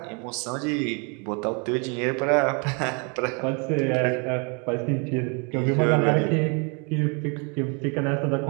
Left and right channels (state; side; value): quieter; left; 34.5 dB